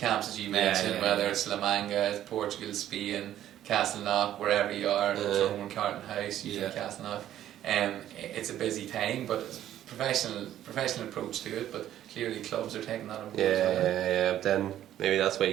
as you mentioned, yeah. whether it's La Manga, Portugal, Spain, Castleknock, wherever you are, Tyrone, Carton House, usually Yeah. Castleknock. It's a busy time, but it's a professional approach to it, but clearly clubs are taking that on board as well. Yeah. But then maybe that's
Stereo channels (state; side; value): quieter; left; 12.0 dB